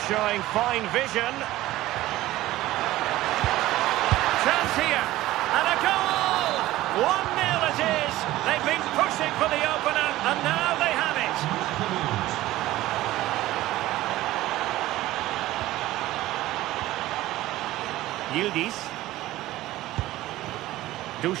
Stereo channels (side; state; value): left; quieter; 16.2 dB